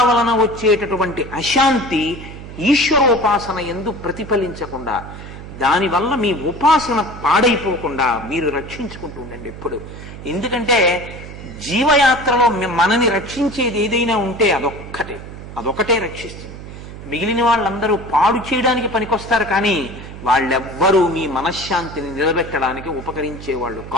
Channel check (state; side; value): noise; right; hum, 13 dB below the sound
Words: వలన వచ్చేటటువంటి అశాంతి ఈశ్వరోపాసన ఎందు ప్రతిఫలించకుండా, దానివల్ల మీ ఉపాసన పాడైపోకుండా మీరు రక్షించుకుంటూ ఉండండి ఎప్పుడు. ఎందుకంటే జీవయాత్రలో మనని రక్షించేది ఏదైనా ఉంటే అదొకటే రక్షిస్తుంది. మిగిలిన వాళ్ళందరూ పాడు చేయడానికి పనికొస్తారు, కానీ వాళ్ళెవ్వరూ మీ మనశ్శాంతిని నిలబెట్టడానికి ఉపకరించే వాళ్ళు